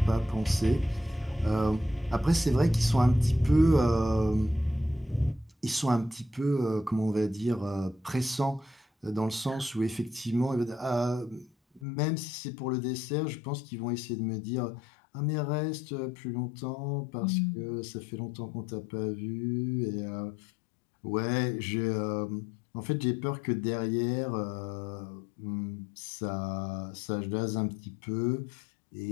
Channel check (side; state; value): right; drops out; at 11.9 s